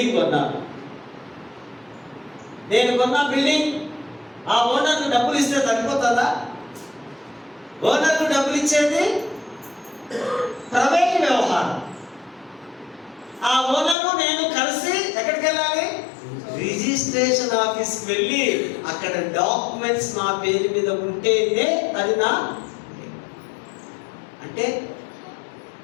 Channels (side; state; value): right; drops out; at 14.0 s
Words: కొన్నాను. నేను కొన్న బిల్డింగ్ ఆ ఓనర్కు డబ్బులు ఇస్తే సరిపోతుందా? ఓనర్కు డబ్బులు ఇచ్చేది ప్రైవేట్ వ్యవహారం. ఆ ఓనరు నేను కలిసి ఎక్కడికి వెళ్ళాలి? రిజిస్ట్రేషన్ ఆఫీస్కి వెళ్ళి అక్కడ డాక్యుమెంట్స్ నా పేరు మీద ఉంటేనే అది నా. అంటే